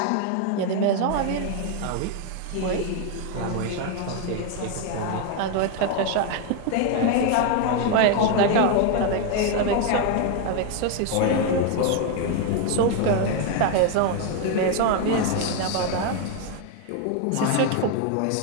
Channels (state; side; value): different; both; correlation 0.01